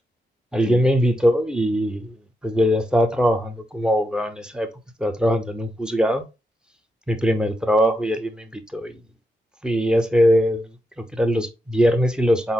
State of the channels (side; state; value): both; normal; correlation 0.85